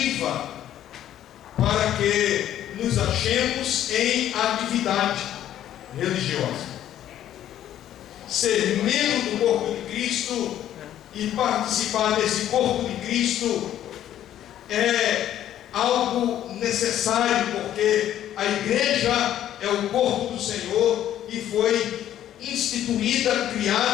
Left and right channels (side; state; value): right; quieter; 11.6 dB